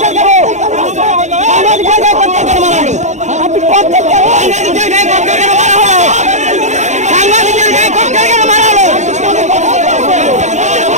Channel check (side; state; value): left; late; 0.34 ms